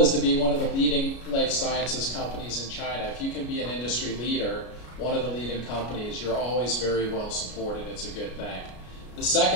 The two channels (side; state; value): right; late; 33 ms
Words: to be one of the leading life sciences companies in China. If you can be an industry leader, one of the leading companies, you're always very well supported. It's a good thing. The